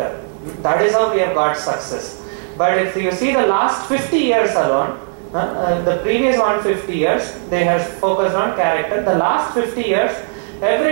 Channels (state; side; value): silent; left; digital silence